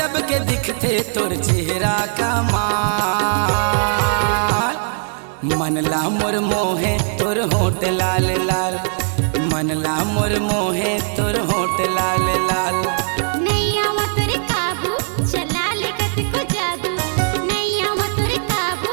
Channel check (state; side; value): silent; left; 66 dB below the other